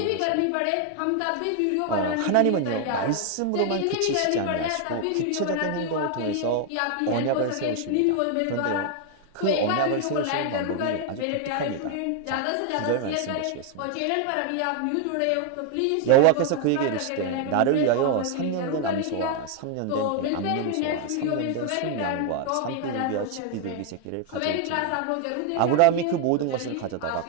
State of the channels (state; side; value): different; both; correlation 0.00